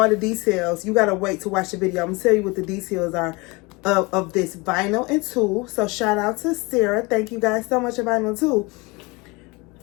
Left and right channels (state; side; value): quieter; right; 25.8 dB